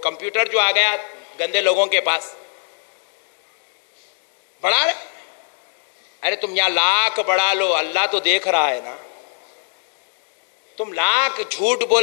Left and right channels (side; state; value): right; silent; digital silence